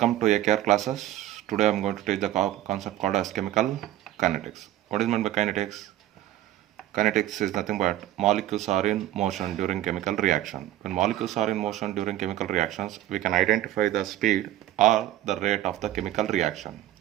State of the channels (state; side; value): quieter; left; 13.5 dB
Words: to AKR classes. Today I am going to teach the concept called as chemical kinetics. What is meant by kinetics? Kinetics is nothing but molecules are in motion during chemical reaction. When molecules are in motion during chemical reactions, we can identify the speed or the rate of the chemical reaction.